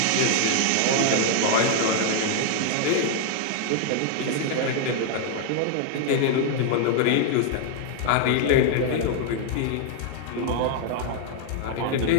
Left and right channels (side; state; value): both; different; correlation 0.00